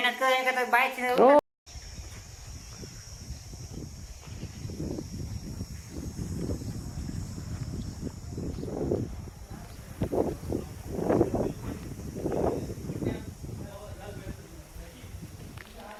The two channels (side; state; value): both; identical; correlation 1.00